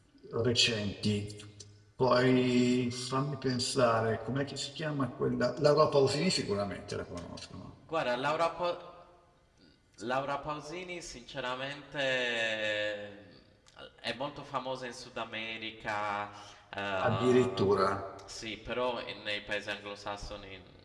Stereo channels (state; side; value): identical; both; correlation 1.00